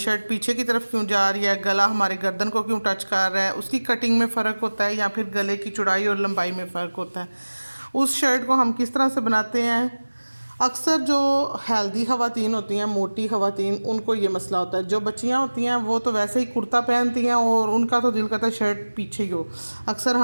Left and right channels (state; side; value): inverted; both; correlation -1.00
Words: पीछे की तरफ क्यों जा रही है, गला हमारे गर्दन को क्यों टच कर रहा है, उसकी कटिंग में फ़र्क होता है या फिर गले की चौड़ाई और लंबाई में फ़र्क होता है। उस शर्ट को हम किस तरह से बनाते हैं। अक्सर जो हेल्दी ख़वातीन होती हैं, मोटी ख़वातीन, उनको ये मसला होता है। जो बच्चियां होती हैं वो तो वैसे ही कुर्ता पहनती हैं और उनका तो दिल करता है शर्ट पीछे ही हो। अक्सर